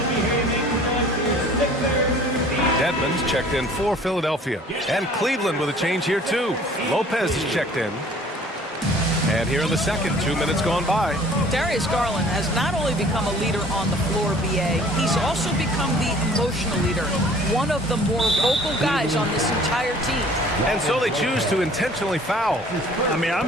Dedmon's checked in for Philadelphia. And Cleveland with a change here too. Lopez is checked in. And here in the second, 2 minutes gone by. Darius Garland has not only become a leader on the floor, BA, he's also become the emotional leader, one of the more vocal guys on this entire team. And so they choose to intentionally foul. I mean,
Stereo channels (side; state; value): both; normal; correlation 0.52